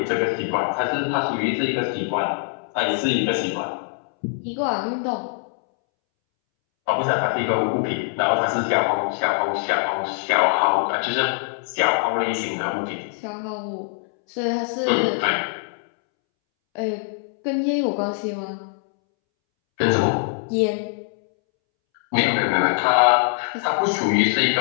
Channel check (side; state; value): right; silent; 64 dB below the other